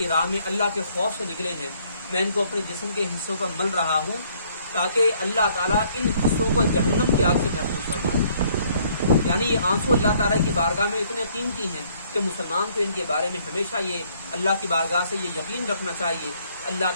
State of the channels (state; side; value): inverted; both; correlation -0.64